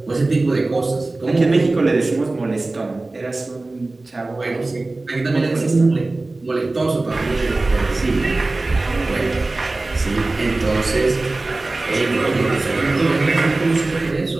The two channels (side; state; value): left; quieter; 3.1 dB